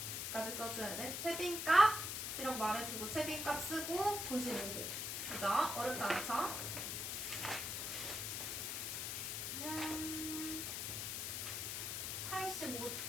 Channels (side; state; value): left; noise; hiss, 2 dB below the sound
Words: 써줘야 돼. 최빈값이라고 말해주고 최빈값 쓰고 95호. 그죠? 어렵지 않죠?